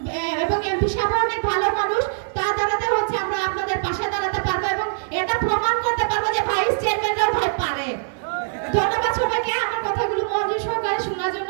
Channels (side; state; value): left; silent; digital silence